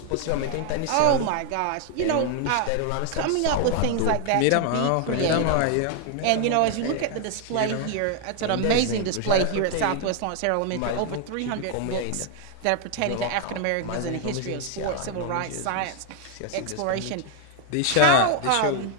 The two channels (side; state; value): both; different; correlation 0.00